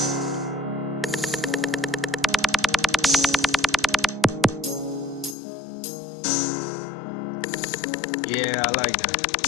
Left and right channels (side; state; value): right; drops out; at 5.4 s